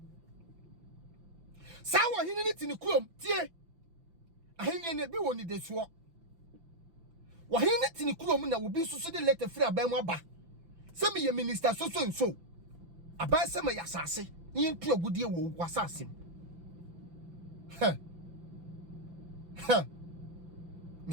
sa wo hene ni ti ni krom tie ahene ne bi woni de so wo hene ni ti ni krom na wo bi soso de letter free aban mu aba se me ye minister so aban se me yasase ni ntu agudie wo wasase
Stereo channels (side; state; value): left; late; 5.9 ms